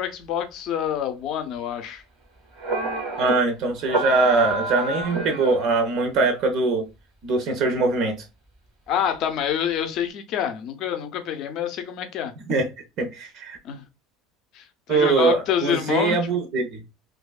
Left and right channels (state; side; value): normal; both; correlation 0.36